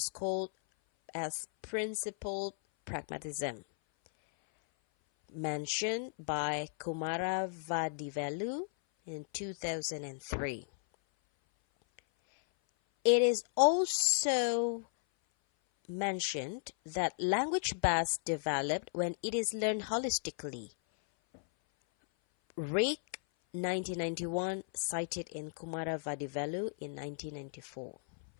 called as principled pragmatism, mentioned by Kumaravadivelu in 2003. It is also mentioned that language best developed when it is learned holistically. Rick 1991 cited in Kumaravadivelu in 1994.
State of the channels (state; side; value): silent; right; 54 dB below the other